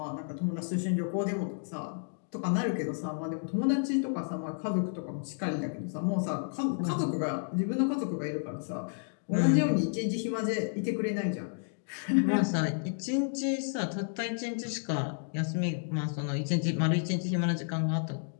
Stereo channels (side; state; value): right; silent; digital silence